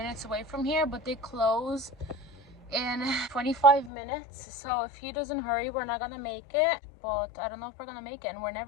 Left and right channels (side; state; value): right; drops out; at 3.9 s